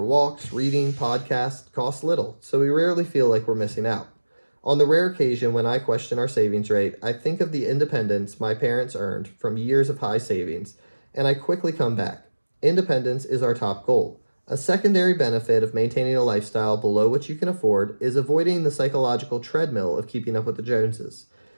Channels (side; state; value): both; inverted; correlation -1.00